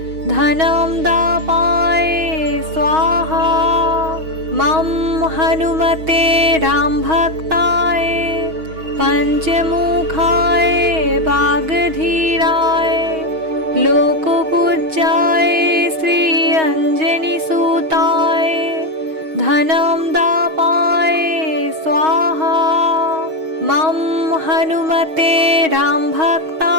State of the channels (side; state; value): left; late; 6.3 ms